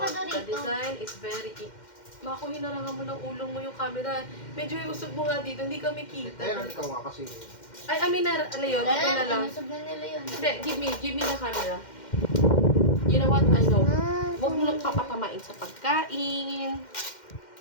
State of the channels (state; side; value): late; right; 2.1 ms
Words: The Dorito. design is very Mako, hinarangan mo ng ulong mo yung camera. Medyo iusog mo nga dito, hindi kami kita. Ayun, ikaw nga kasi. Ay, amin na, ano yun, dito na lang. Inusog na nila yun. Hindi, give me the camera. You know what, I know. Huwag mo nang papatamain sa pagkain.